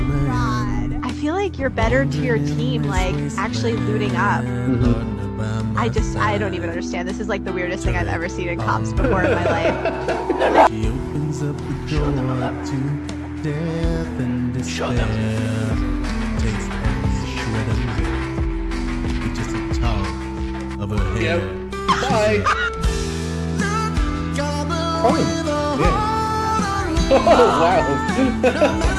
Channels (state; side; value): identical; both; correlation 1.00